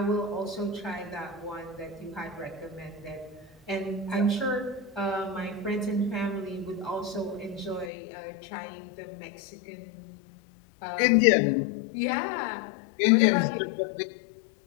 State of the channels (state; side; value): drops out; right; at 7.9 s